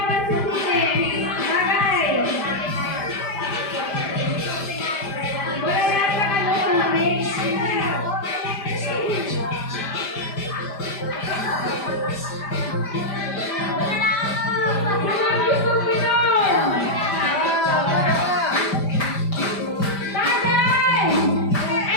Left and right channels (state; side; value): late; right; 5.0 ms